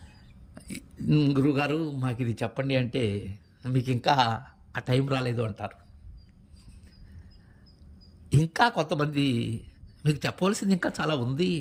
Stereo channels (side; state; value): both; identical; correlation 1.00